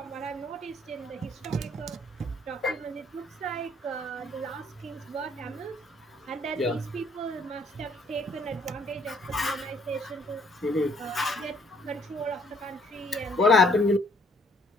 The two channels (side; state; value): both; normal; correlation 0.63